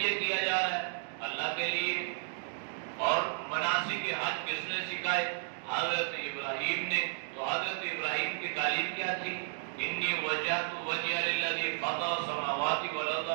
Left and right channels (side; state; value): left; silent; digital silence